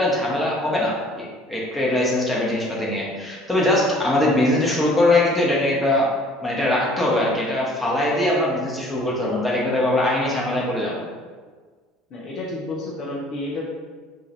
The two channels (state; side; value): normal; both; correlation 0.55